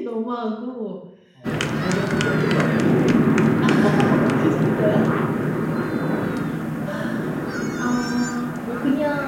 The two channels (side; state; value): both; identical; correlation 1.00